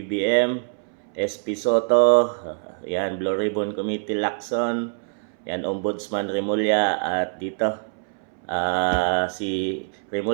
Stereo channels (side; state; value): left; silent; 62 dB below the other